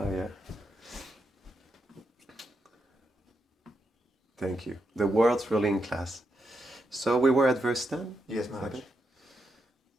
yeah. Thank you. The world's ruling class. So we were at verse 10? Yes, Maharaj. Okay.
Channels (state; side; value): normal; both; correlation 0.83